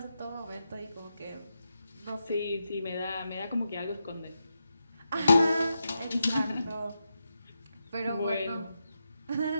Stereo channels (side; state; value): both; inverted; correlation -0.87